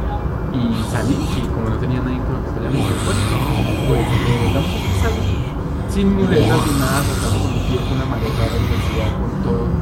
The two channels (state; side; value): identical; both; correlation 1.00